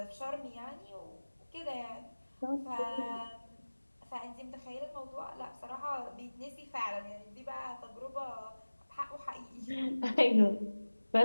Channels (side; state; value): both; inverted; correlation -1.00